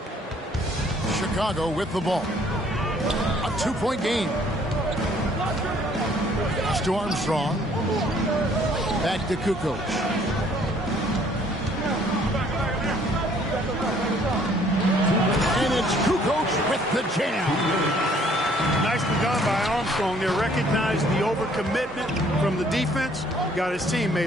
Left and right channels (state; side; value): normal; both; correlation 0.61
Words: Chicago with the ball. A 2-point game. Pass to Armstrong. Back to Kukoc. And it's Kukoc with the jam. Nicely done by Armstrong. They recognized the overcommitment from the defense. Got his